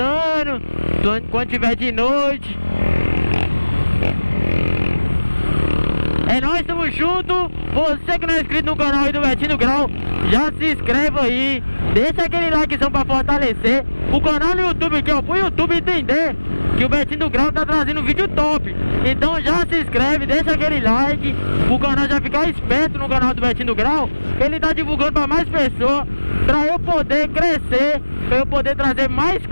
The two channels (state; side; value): inverted; both; correlation -1.00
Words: quando tiver de noite. É nóis, tamo junto. Você que não é inscrito no canal aí do Betinho do Grau, já se inscreve aí. Deixa aquele likezão pra fortalecer o canal no YouTube aqui, ó, pro YouTube entender que o Betinho do Grau tá trazendo vídeo top. Então já se inscreve, deixa aquele like, o canal já ficar esperto no canal do Betinho do Grau. Ele tá divulgando pra mais pessoas, pra eu poder crescer, pra eu poder trazer mais